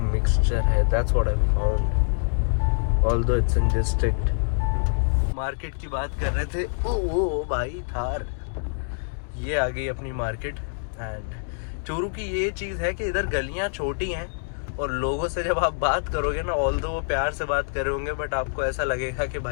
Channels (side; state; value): right; silent; digital silence